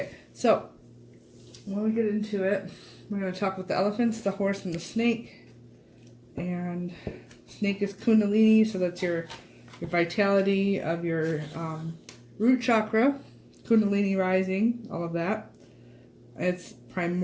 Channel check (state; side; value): identical; both; correlation 1.00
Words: so when we get into it, We're going to talk about the elephants, the horse, and the snake. And snake is Kundalini, so that's your vitality of your root chakra, Kundalini rising, all of that. It's